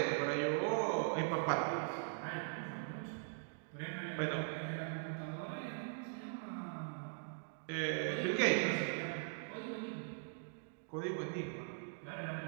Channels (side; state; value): left; silent; digital silence